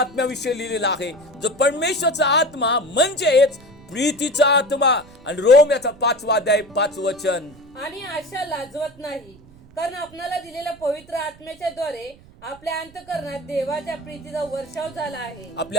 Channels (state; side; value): noise; right; rumble, 24 dB below the sound